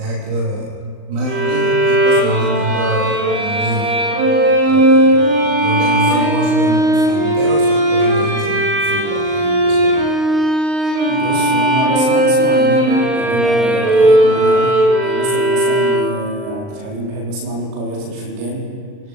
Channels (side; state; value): left; late; 39 ms